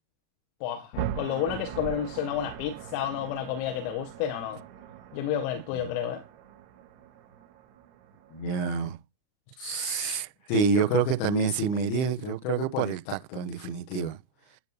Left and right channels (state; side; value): late; right; 39 ms